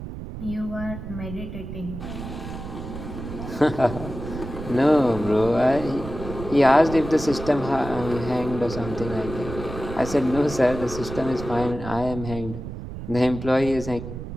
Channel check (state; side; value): noise; right; rumble, 9 dB below the sound